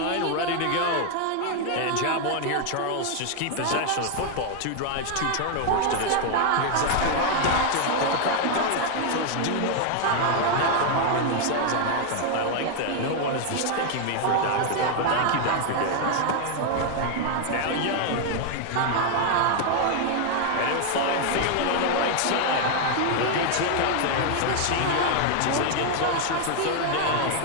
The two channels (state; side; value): different; both; correlation 0.00